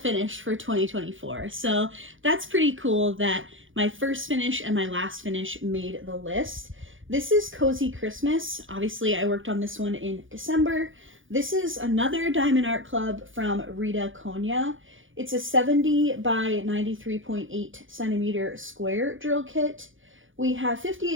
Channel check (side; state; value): left; late; 0.57 ms